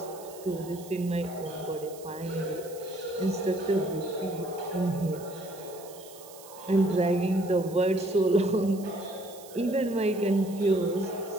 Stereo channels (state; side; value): noise; right; hiss, 19 dB below the sound